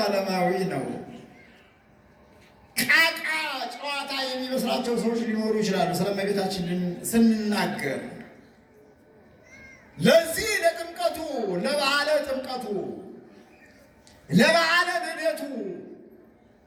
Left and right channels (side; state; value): both; identical; correlation 1.00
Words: ነው። ቃቃ ጨዋታ የሚመስላቸው ሰዎች ሊኖሩ ይችላሉ ስለ እመቤታችን ስንናገር። ለዚህ ለጥምቀቱ፣ ለበዓለ ጥምቀቱ፣ ለበዓለ ልደቱ፣